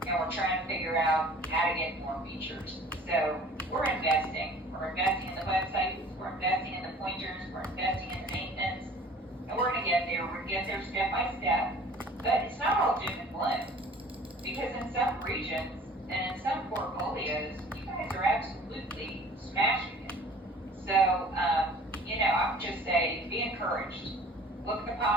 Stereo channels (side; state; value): both; normal; correlation 0.49